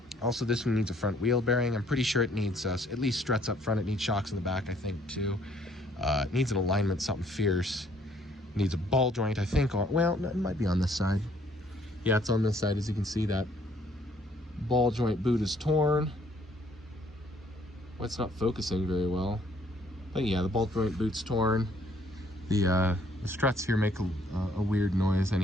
Also, this one needs a front wheel bearing. I'm pretty sure it needs at least struts up front. It needs shocks in the back, I think, too. It needs an alignment, something fierce. It needs a ball joint, I think. Well, it might be on this side. Yeah, it's on this side. As you can see, that ball joint boot is torn. Well, it's not focusing very well. But yeah, the ball joint boot's torn. The struts here make a weird noise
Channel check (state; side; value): normal; both; correlation 0.64